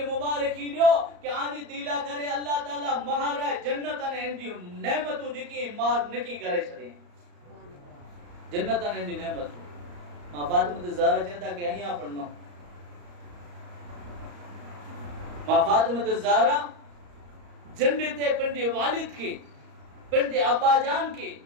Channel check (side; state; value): left; late; 34 ms